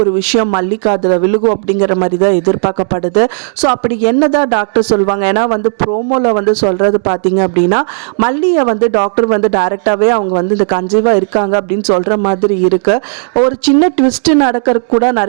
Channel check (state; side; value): silent; left; digital silence